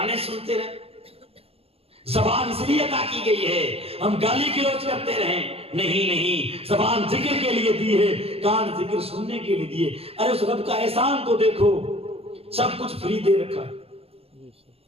سنتے رہیں. زبان اس لیے عطا کی گئی ہے ہم گالی گلوچ کرتے رہیں. نہیں، زبان ذکر کے لیے دی ہے، کان ذکر سننے کے لیے دیے. ارے اس رب کا احسان تو دیکھو، سب کچھ فری دے رکھا.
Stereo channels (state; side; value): late; left; 0.28 ms